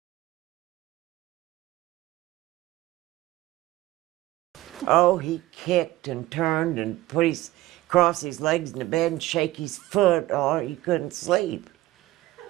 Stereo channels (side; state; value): left; quieter; 17.1 dB